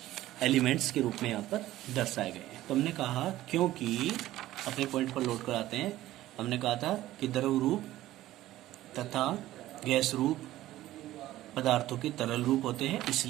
एलिमेंट्स के रूप में यहाँ पर दर्शाए गए हैं। तो हमने कहा, क्योंकि अपने पॉइंट पर लोड कराते हैं, हमने कहा था कि द्रव रूप तथा गैस रूप पदार्थों के तरल रूप होते हैं,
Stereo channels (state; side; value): quieter; left; 15.0 dB